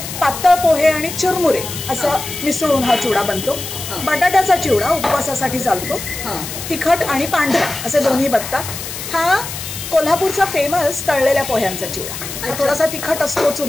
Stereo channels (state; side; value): noise; left; hiss, 8 dB below the sound